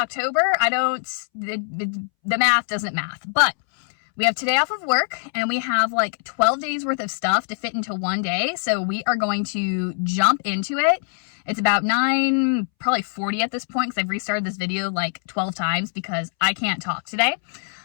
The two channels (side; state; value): right; silent; 63 dB below the other